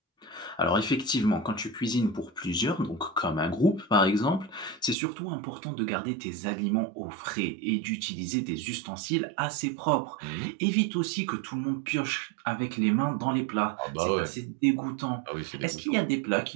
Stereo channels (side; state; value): left; drops out; at 5.0 s